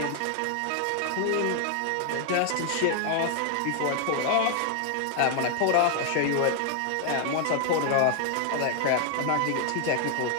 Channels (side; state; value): both; different; correlation 0.00